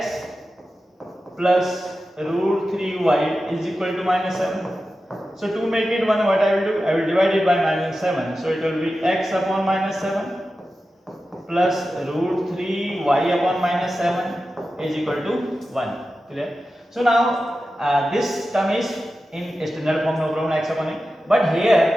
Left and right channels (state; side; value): normal; both; correlation 0.92